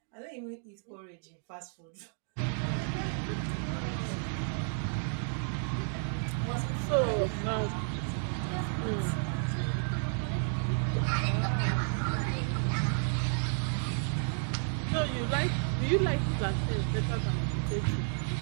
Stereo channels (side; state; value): left; silent; 56 dB below the other